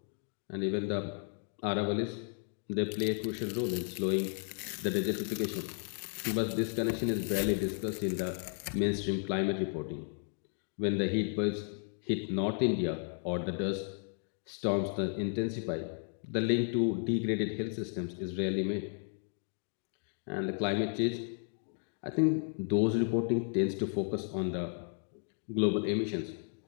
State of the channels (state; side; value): silent; right; 55 dB below the other